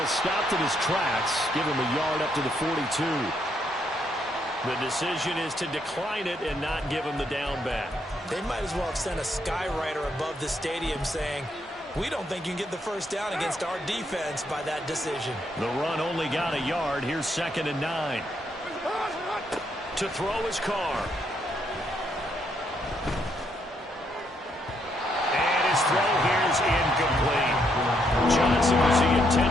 stopped in his tracks. Give him a yard up to the 42. The decision is to decline it and not give him the down back. They might as well have sent a skywriter above the stadium saying, we don't think you can get the first down against our defense by that decision. The run only got a yard. Here's 2nd and 9. To throw his Carr. And his throw here is incomplete. Johnson was the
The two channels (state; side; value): normal; both; correlation 0.75